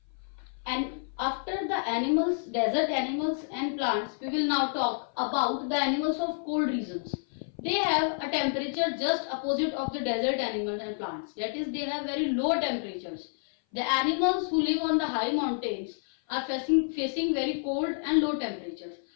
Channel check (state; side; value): silent; right; 56 dB below the other